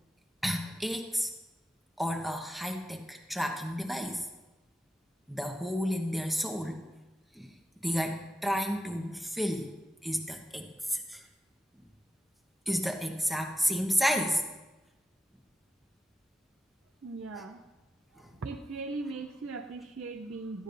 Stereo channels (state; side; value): normal; both; correlation 0.88